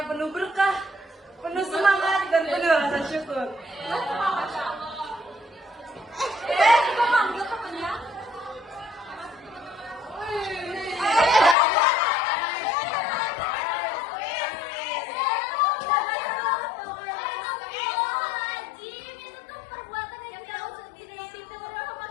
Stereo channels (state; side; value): drops out; right; at 11.6 s